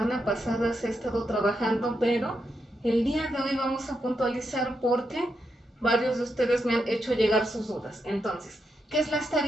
pasada se ha estado trabajando, pero el día de hoy vamos a puntualizar porque varios de ustedes me han hecho llegar sus dudas. Entonces, ¿qué es la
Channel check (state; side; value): normal; both; correlation 0.83